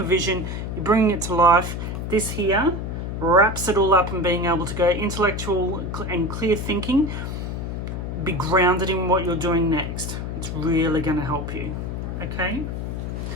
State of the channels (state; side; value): noise; left; hum, 5 dB below the sound